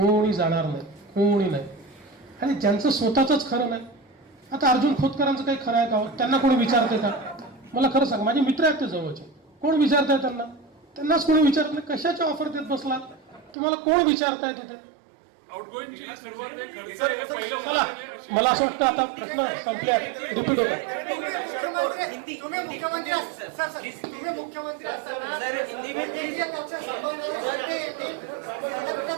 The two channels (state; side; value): drops out; left; at 13.6 s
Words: जाणार नाही, कोणी नाही। आणि ज्यांचं स्वतःच खरं नाही, आता अर्जुन खोतकरांचं काही खरं आहे का? त्यांना कोणी विचारते का? मला खरं सांग, माझे मित्र आहेत ते जवळचे, कोण विचारताय त्यांना? त्यांनाच कोणी विचारत नाही। कशाच्या ऑफर देत बसला? तुम्हाला कोण विचारताय तिथे? मला असं वाटतं आता प्रश्न संपल्या, रिपीट होता।